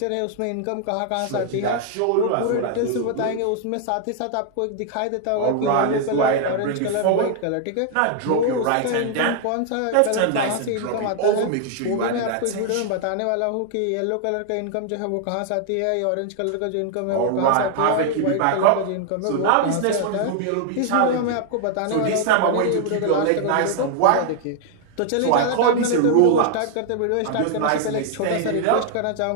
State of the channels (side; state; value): both; different; correlation 0.00